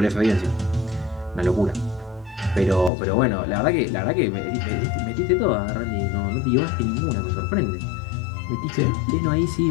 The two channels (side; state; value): right; drops out; at 2.9 s